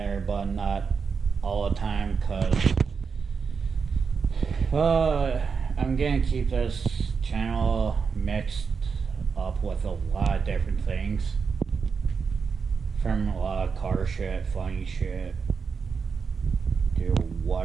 but not all the time, because I'm gonna keep this channel mixed up with a lot of different things, from a lot of car shit, funny shit, to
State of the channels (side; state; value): left; quieter; 5.6 dB